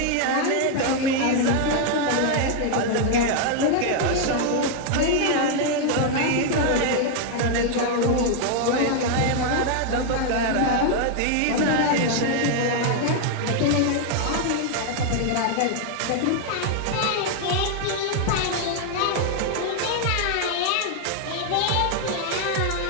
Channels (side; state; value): both; different; correlation 0.00